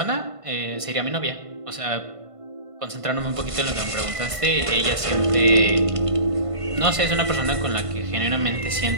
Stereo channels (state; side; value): late; left; 1.5 ms